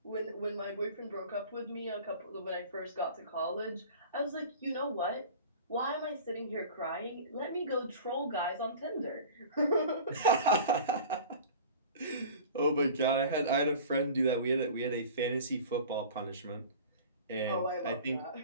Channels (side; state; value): both; inverted; correlation -0.39